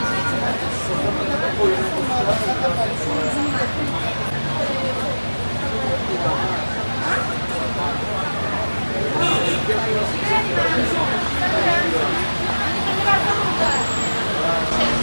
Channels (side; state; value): both; inverted; correlation -1.00